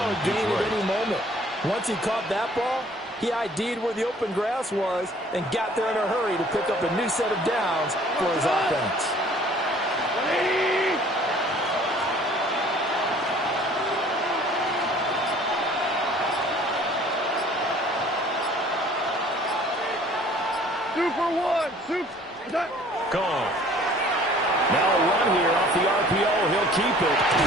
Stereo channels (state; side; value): normal; both; correlation 0.53